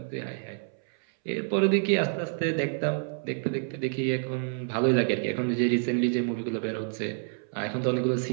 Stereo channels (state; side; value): silent; left; 59 dB below the other